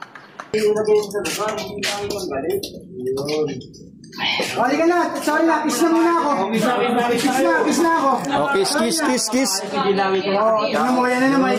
Halika na, sorry na, kiss na muna ako. Kiss na ako. Oh, kiss. Oo, tingnan mo, yan na naman,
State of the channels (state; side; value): identical; both; correlation 1.00